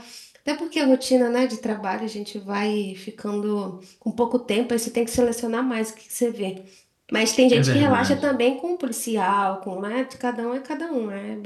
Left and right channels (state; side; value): identical; both; correlation 1.00